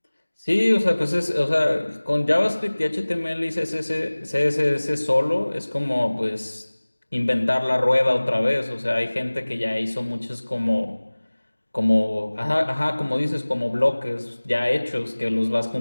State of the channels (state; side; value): inverted; both; correlation -1.00